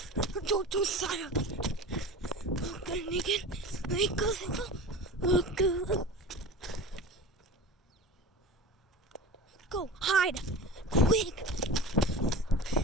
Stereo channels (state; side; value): normal; both; correlation 0.33